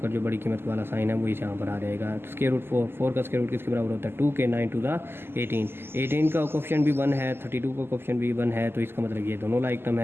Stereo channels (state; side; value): late; left; 0.11 ms